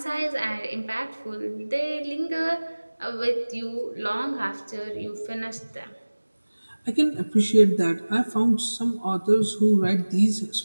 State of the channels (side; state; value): both; inverted; correlation -1.00